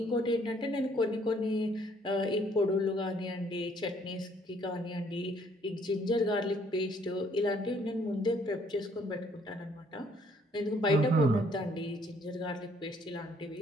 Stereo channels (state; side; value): normal; both; correlation 0.64